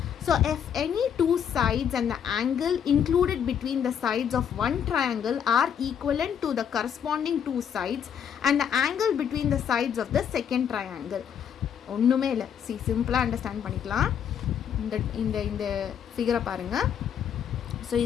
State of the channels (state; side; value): quieter; right; 8.4 dB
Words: So if any two sides and the angle included between the sides of one triangle are equivalent to the corresponding two sides and the angle between the sides of the second triangle. ஒன்றுமே இல்லை, சிம்பிளாக அண்டர்ஸ்டாண்ட் பண்ணிக்கலாம். இந்த ஃபிகரை பாருங்கள். ஸோ